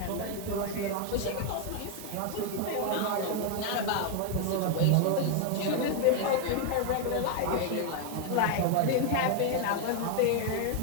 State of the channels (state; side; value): different; both; correlation 0.00